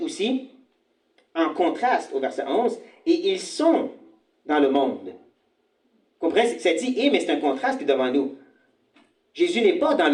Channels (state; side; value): identical; both; correlation 1.00